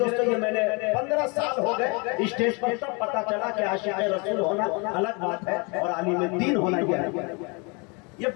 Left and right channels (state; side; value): quieter; right; 31.2 dB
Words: یہ میں نے 15 سال ہو گئے اسٹیج پر, تب پتا چلا کہ عاشق رسول ہونا الگ بات ہے اور عالم دین ہونا یہ